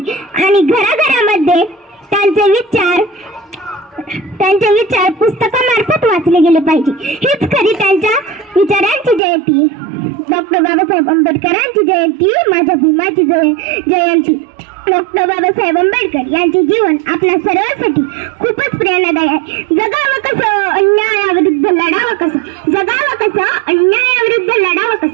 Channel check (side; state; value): left; drops out; at 9.2 s